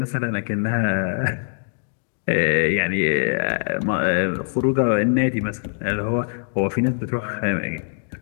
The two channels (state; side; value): silent; right; digital silence